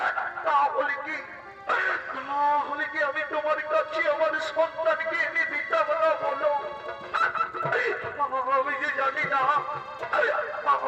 তাহলে কি আমি তোমার কাছে আমার সন্তানকে এনে দিতাম না বলো? আমি যে জানি না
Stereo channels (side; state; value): both; identical; correlation 1.00